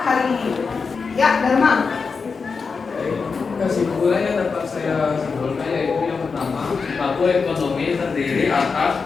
hari ini? Ya, Dharma. Kesimpulannya dapat saya simpulkan yaitu yang pertama, pelaku ekonomi terdiri atas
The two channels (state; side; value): quieter; right; 5.0 dB